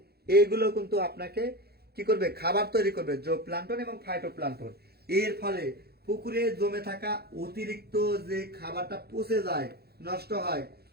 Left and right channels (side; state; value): left; late; 0.46 ms